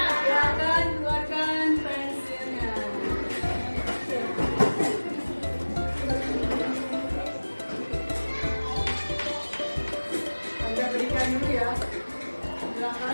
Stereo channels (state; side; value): inverted; both; correlation -1.00